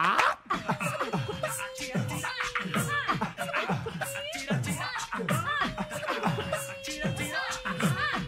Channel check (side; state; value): both; identical; correlation 1.00